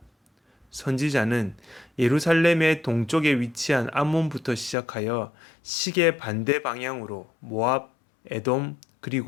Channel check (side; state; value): right; drops out; at 4.8 s